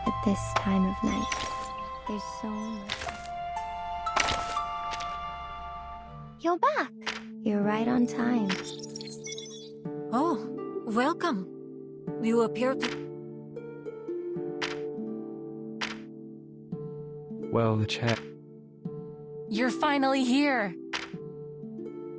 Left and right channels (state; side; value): identical; both; correlation 1.00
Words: at this time of night. There's so much. You're back. You're right on time. Oh, welcome. You appear to... Well, the chat. You're finally here.